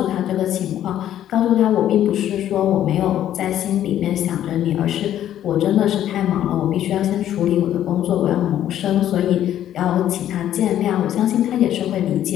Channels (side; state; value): right; quieter; 11.5 dB